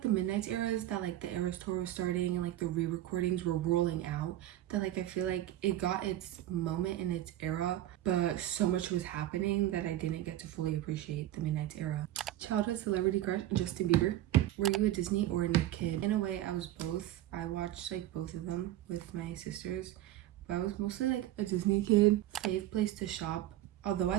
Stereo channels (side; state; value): left; quieter; 13.8 dB